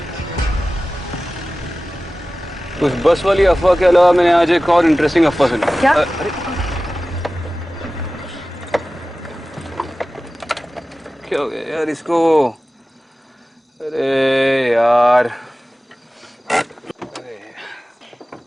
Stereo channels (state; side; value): normal; both; correlation 0.96